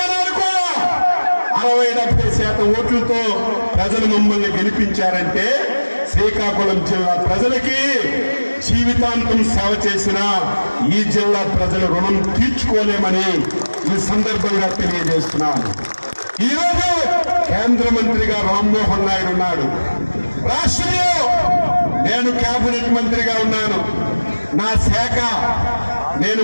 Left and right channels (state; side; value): inverted; both; correlation -1.00